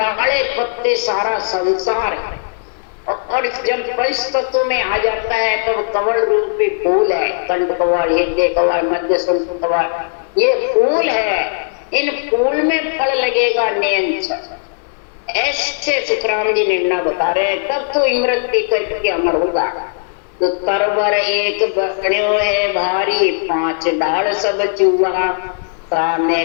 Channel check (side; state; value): right; silent; digital silence